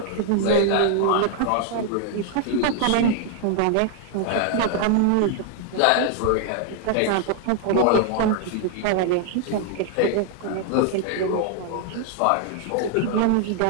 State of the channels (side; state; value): both; different; correlation 0.00